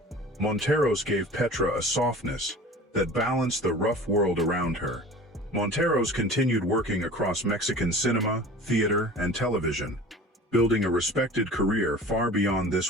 Monteros gave Petra a softness that balanced the rough world around her. Monteros continued working across Mexican cinema, theater, and television, building a respected career far beyond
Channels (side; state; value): both; normal; correlation 0.41